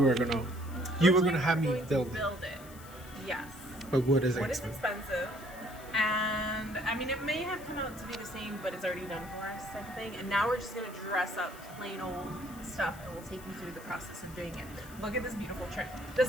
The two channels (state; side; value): noise; left; hiss, 19 dB below the sound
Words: were gonna have me build it. Yes. But wood is expensive. And I mean, it may have come out to be the same, but it's already done for us type of thing. And now we're just gonna dress up plain old stuff, and we'll take you through the process of doing it. Look at this beautiful trim.